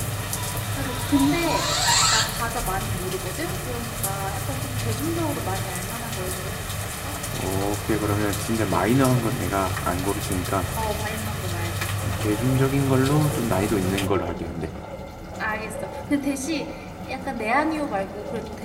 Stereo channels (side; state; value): both; identical; correlation 1.00